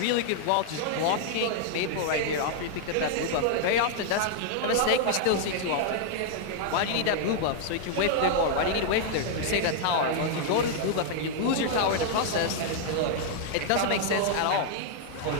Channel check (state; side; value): different; both; correlation -0.01